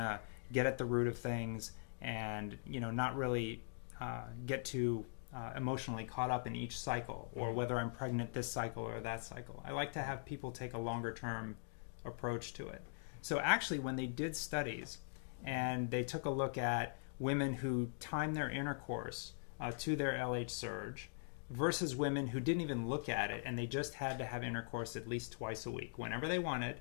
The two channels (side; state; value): right; silent; digital silence